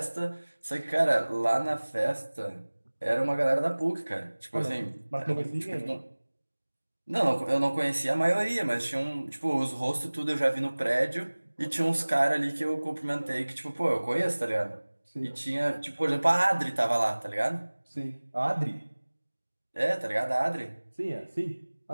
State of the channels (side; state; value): both; inverted; correlation -1.00